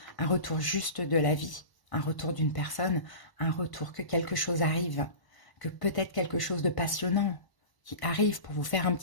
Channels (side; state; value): right; late; 1.1 ms